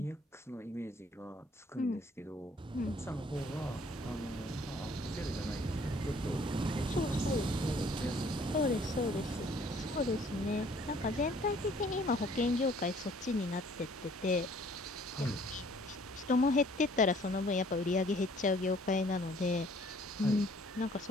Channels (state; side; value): normal; both; correlation 0.58